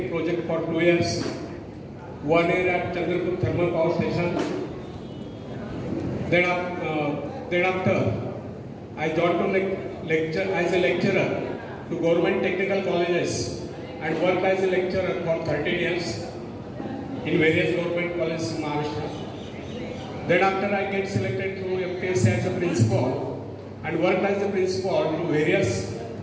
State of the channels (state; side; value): identical; both; correlation 1.00